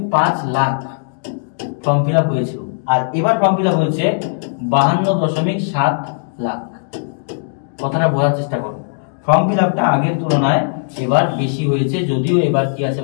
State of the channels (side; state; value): right; silent; digital silence